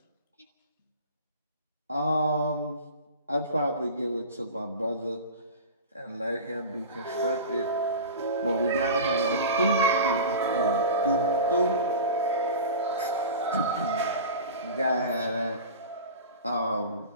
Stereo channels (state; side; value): inverted; both; correlation -0.32